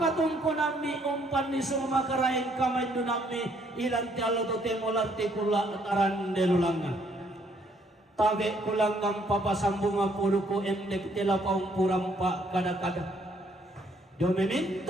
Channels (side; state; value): both; normal; correlation 0.67